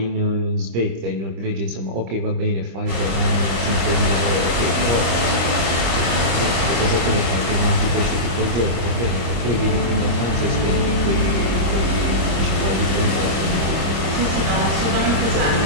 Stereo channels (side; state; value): left; late; 25 ms